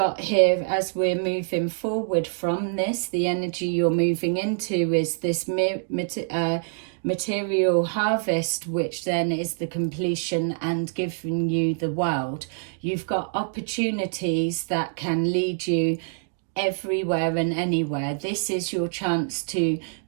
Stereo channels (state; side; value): silent; left; digital silence